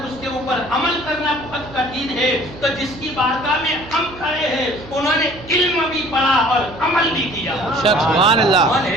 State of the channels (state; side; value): noise; right; hum, 17 dB below the sound